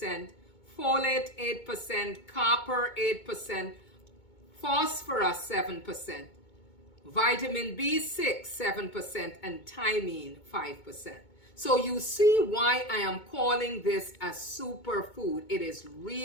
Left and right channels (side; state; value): right; late; 2.2 ms